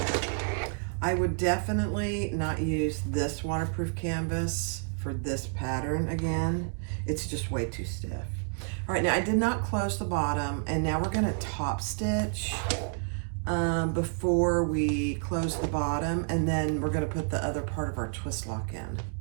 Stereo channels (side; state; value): left; silent; 58 dB below the other